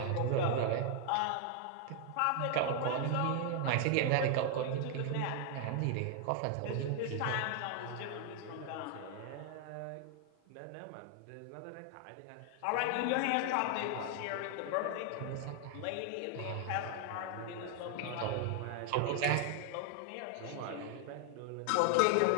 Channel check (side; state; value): both; different; correlation 0.00